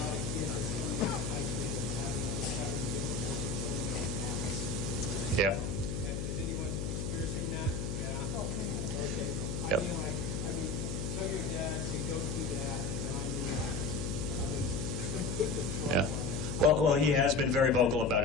of kids that are coming out of high school and having difficulty filling out apps. Yeah. Is anyone experiencing that? Yeah. Okay. Yep. I mean, tell your dad to go through that, and Yeah. Well, he has been very vocal about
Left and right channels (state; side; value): noise; left; hum, 2 dB below the sound